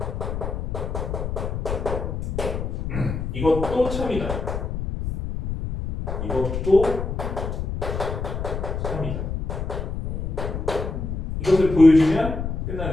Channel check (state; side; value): noise; left; rumble, 4 dB below the sound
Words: 이것도 참이다. 이것도 참이다. 이것을 보여주면